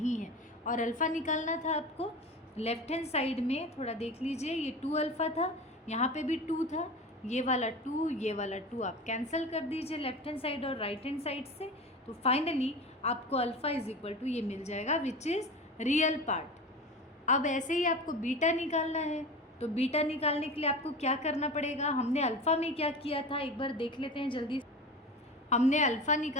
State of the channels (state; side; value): normal; both; correlation 0.31